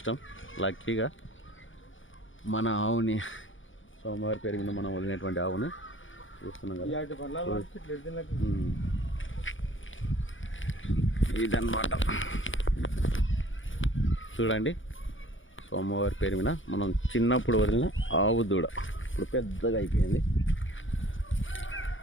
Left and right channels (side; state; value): right; late; 0.57 ms